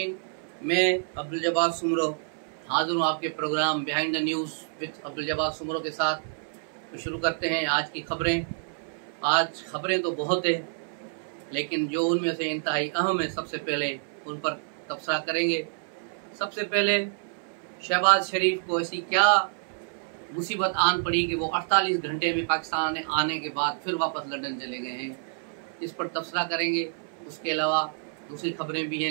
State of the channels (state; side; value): silent; left; 59 dB below the other